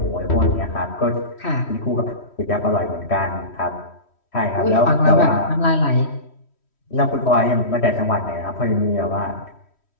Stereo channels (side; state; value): right; late; 3.1 ms